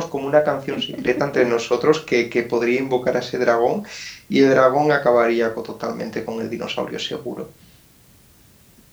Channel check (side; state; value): both; identical; correlation 1.00